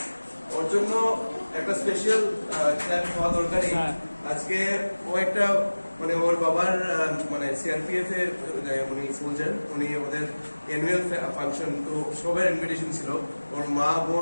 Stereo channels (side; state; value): both; inverted; correlation -1.00